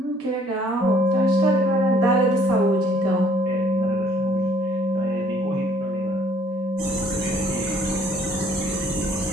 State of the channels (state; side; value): normal; both; correlation 0.61